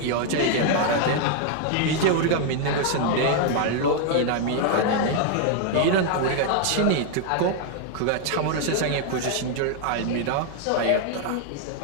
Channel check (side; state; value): both; different; correlation 0.00